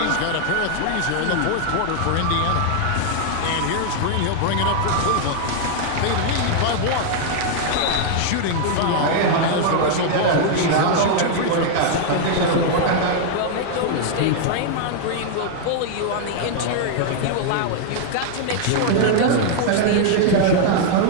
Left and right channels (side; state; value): both; different; correlation 0.00